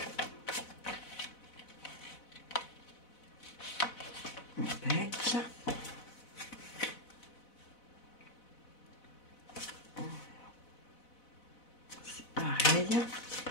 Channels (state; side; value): late; right; 4.0 ms